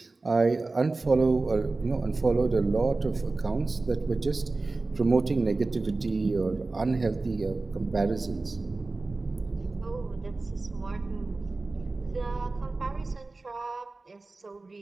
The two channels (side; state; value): left; quieter; 3.5 dB